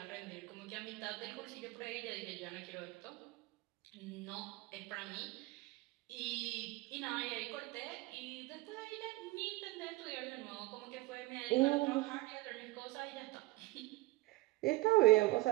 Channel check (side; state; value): left; quieter; 20.3 dB